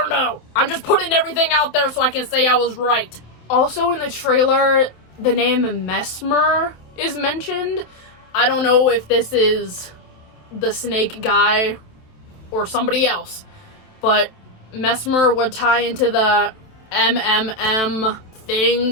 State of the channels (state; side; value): late; right; 27 ms